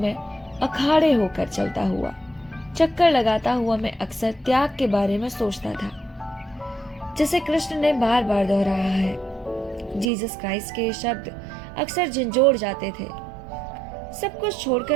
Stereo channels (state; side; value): drops out; left; at 10.1 s